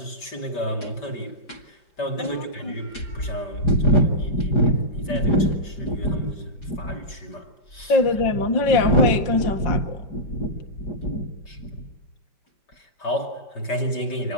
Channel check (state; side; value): late; right; 5.1 ms